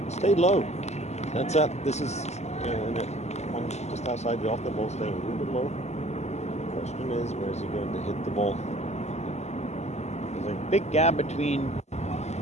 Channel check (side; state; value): right; late; 0.33 ms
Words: stayed low. That's that. This is one just outside the off the ball, staying a little bit low. Question is, where is he going to hit the ball? There's a big gap between